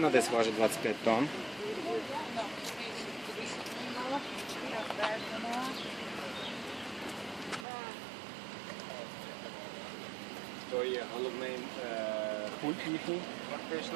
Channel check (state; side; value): drops out; left; at 7.7 s